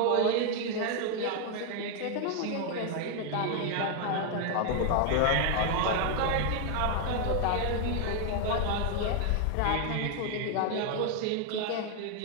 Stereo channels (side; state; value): both; different; correlation 0.00